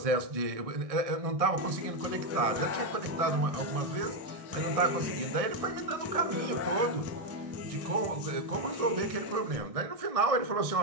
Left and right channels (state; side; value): late; left; 1.6 ms